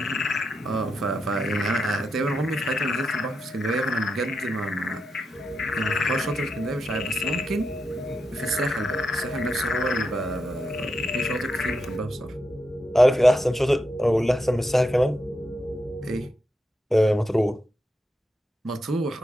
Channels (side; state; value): both; normal; correlation 0.85